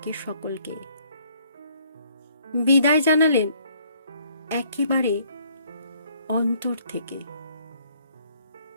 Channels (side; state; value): both; inverted; correlation -0.64